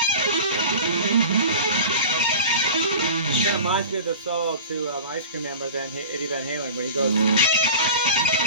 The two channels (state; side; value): inverted; both; correlation -0.36